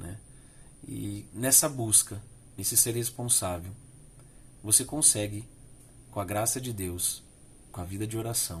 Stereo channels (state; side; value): identical; both; correlation 1.00